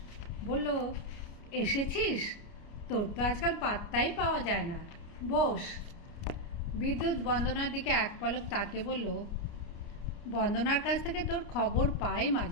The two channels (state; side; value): late; right; 29 ms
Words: বলল, এসেছিস? তোর তো আজকাল পাত্তাই পাওয়া যায় না, বস। বিদ্যুৎ বন্দনার দিকে এক পলক তাকিয়ে বলল, বন্দনার কাছ থেকে তোর খবর পাই